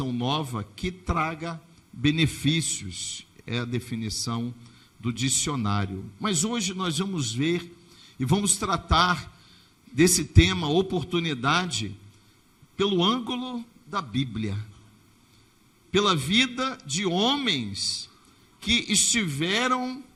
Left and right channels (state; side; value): identical; both; correlation 1.00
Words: nova que traga benefícios, é a definição do dicionário. Mas hoje nós vamos ver e vamos tratar desse tema, oportunidade, pelo ângulo da Bíblia, pela vida de homens que estiveram